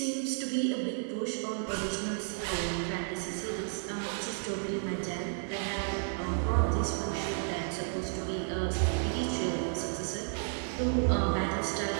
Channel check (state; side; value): silent; left; 56 dB below the other